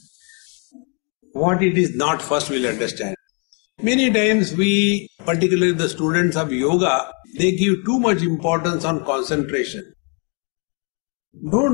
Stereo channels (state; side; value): quieter; right; 37.9 dB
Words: what it is not first we'll understand. Many times we, particularly the students of yoga, they give too much importance on concentration.